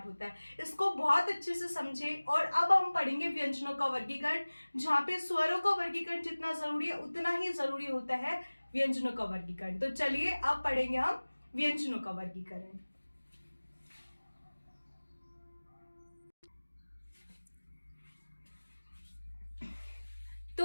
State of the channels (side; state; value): both; inverted; correlation -1.00